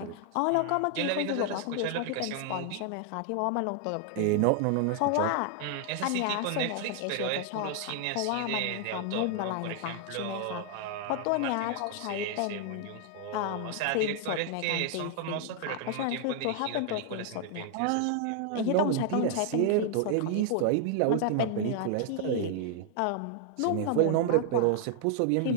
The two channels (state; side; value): different; both; correlation 0.00